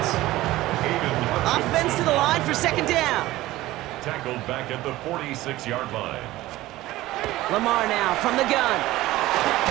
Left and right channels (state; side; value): quieter; left; 17.0 dB